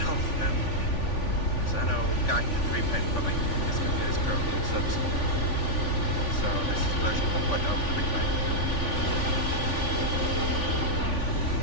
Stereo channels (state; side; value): late; right; 3.5 ms